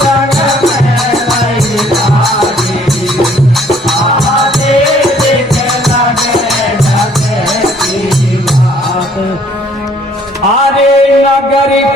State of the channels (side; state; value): both; normal; correlation 0.60